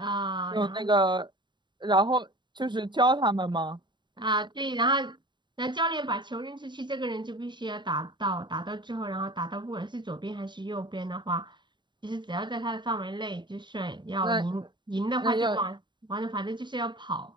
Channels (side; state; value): left; late; 0.22 ms